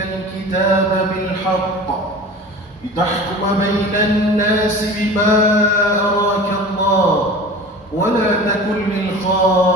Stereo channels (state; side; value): normal; both; correlation 0.38